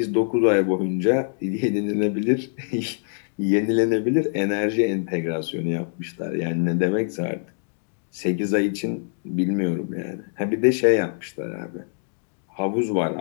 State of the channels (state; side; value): silent; right; digital silence